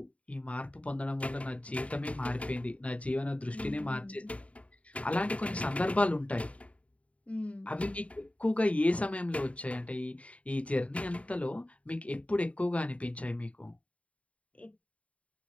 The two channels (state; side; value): late; right; 0.065 ms